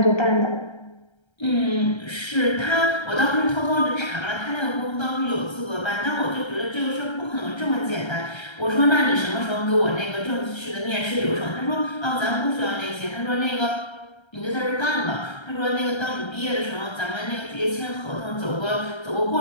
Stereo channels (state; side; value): late; right; 1.3 ms